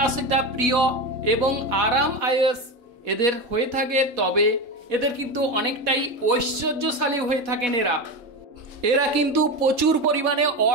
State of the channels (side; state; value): left; late; 4.1 ms